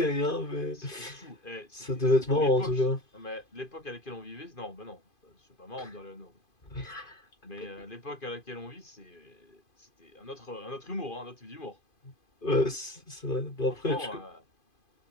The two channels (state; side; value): late; right; 2.5 ms